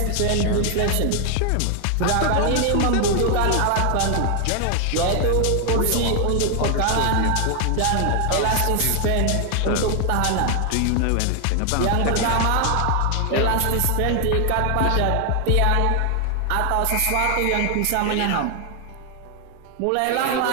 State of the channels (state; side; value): different; both; correlation 0.00